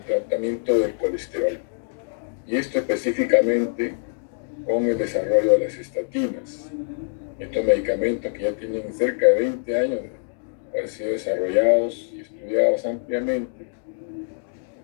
tratamiento del colesterol. Y esto específicamente con el desarrollo de las estatinas. Estos medicamentos que ya tienen cerca de 20 años de haber sido desarrollados y estudiados ampliamente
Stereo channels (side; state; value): right; silent; digital silence